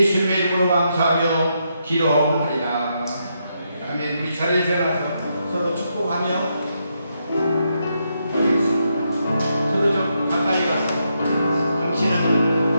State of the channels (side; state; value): both; inverted; correlation -0.80